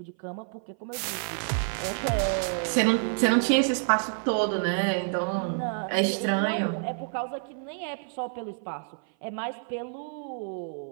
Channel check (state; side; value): silent; left; 56 dB below the other